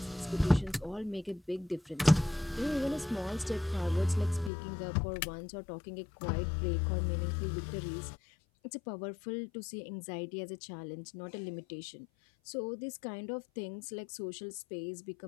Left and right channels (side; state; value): right; drops out; at 4.5 s